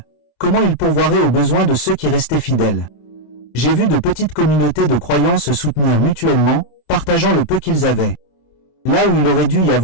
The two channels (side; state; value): right; late; 26 ms